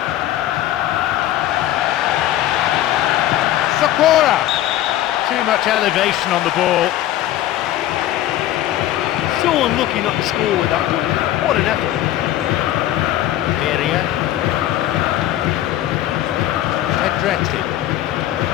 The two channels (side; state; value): right; quieter; 13.6 dB